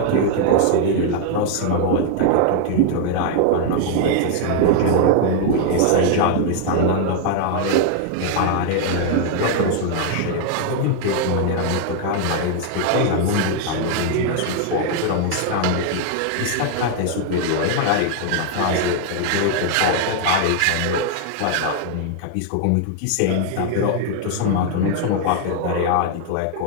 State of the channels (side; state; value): both; different; correlation 0.00